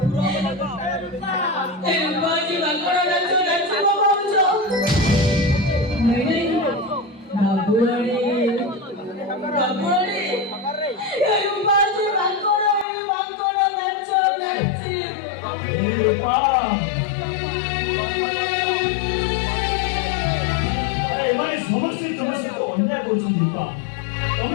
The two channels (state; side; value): drops out; right; at 12.9 s